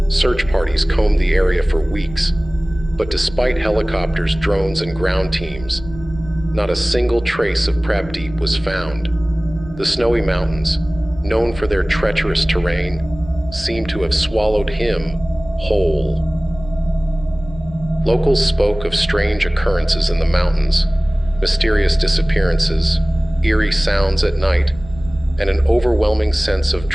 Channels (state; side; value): noise; right; rumble, 16 dB below the sound